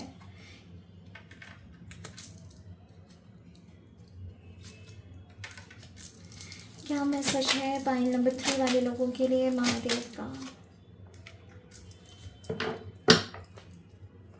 क्या मैसेज है पाइल नंबर 3 वाले लोगों के लिए महादेव का।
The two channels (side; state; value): both; identical; correlation 1.00